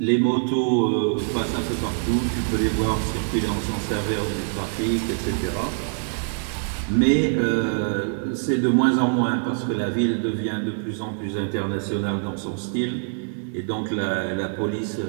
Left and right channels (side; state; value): left; silent; 62 dB below the other